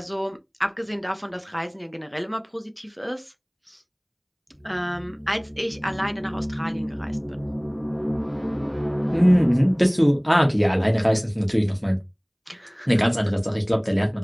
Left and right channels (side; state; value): both; identical; correlation 1.00